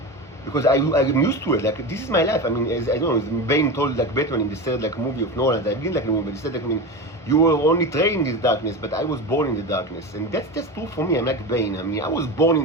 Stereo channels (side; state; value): both; normal; correlation 0.24